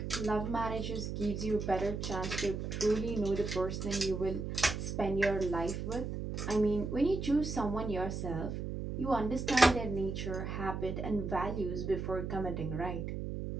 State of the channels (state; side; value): noise; right; hum, 4 dB below the sound